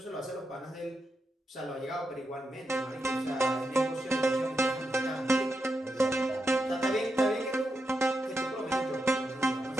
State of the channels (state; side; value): normal; both; correlation 0.86